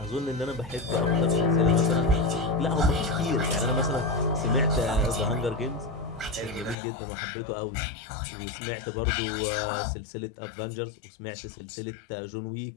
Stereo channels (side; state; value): right; drops out; at 6.8 s